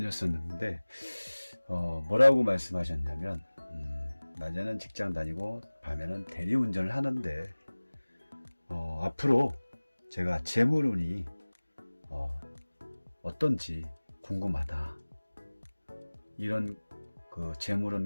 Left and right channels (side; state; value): both; inverted; correlation -1.00